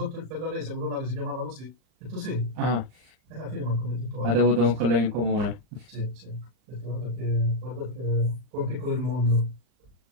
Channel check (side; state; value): left; late; 39 ms